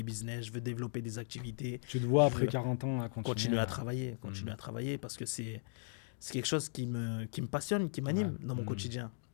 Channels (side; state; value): right; silent; digital silence